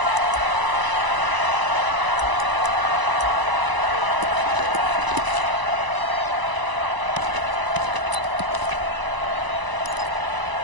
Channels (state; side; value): late; left; 1.0 ms